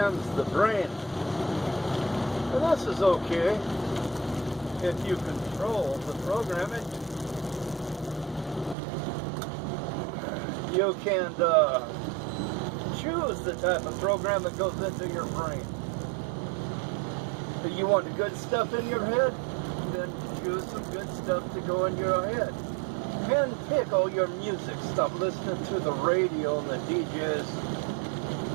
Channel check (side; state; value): left; drops out; at 8.8 s